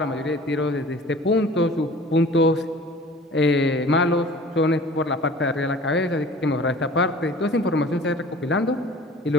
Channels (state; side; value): normal; both; correlation 0.45